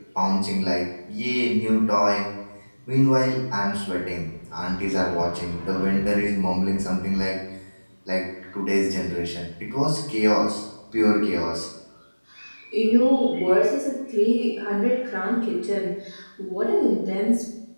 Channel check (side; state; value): both; inverted; correlation -1.00